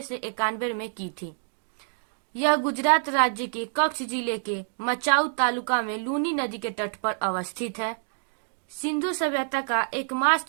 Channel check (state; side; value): silent; left; digital silence